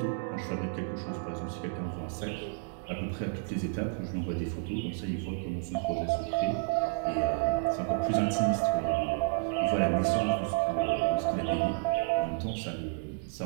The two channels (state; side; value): silent; left; digital silence